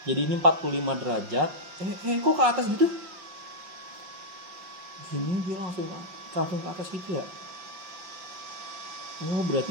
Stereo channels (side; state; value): left; late; 5.6 ms